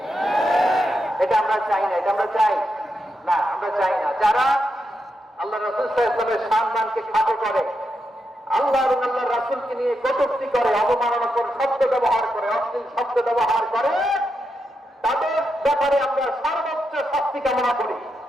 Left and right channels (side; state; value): both; normal; correlation 0.84